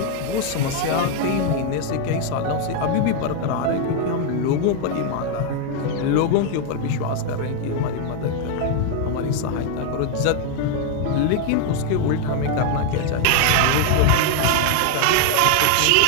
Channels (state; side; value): different; both; correlation 0.00